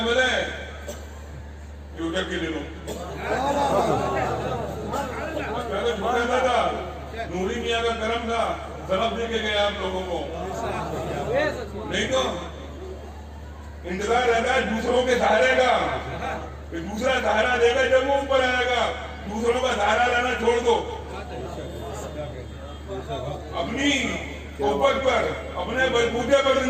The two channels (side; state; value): both; identical; correlation 1.00